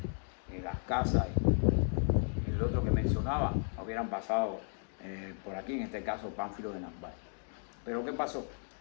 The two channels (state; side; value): silent; right; 55 dB below the other